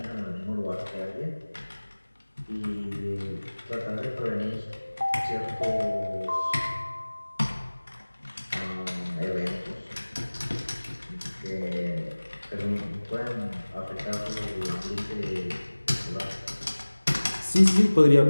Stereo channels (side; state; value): both; inverted; correlation -1.00